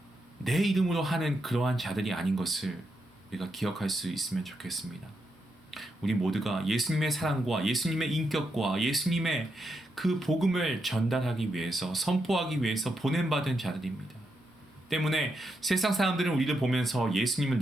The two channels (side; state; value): both; normal; correlation 0.82